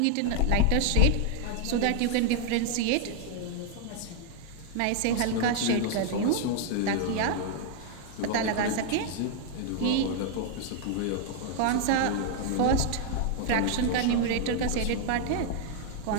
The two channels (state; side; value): different; both; correlation 0.00